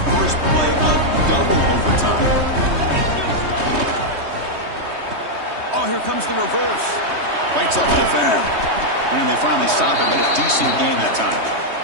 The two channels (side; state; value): left; late; 3.2 ms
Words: play of double overtime. Oh, here comes the reverse. Fights up the defender. And they finally stop it, but a decent gain that time.